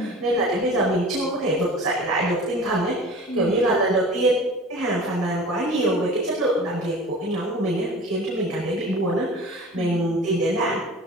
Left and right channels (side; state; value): both; normal; correlation 0.40